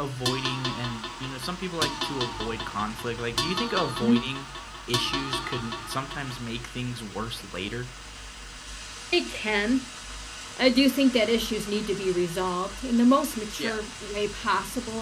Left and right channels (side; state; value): both; identical; correlation 1.00